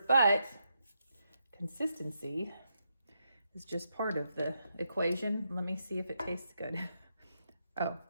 but consistency is just part of the equation. Let me see if it tastes good. Oh,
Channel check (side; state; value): both; inverted; correlation -0.82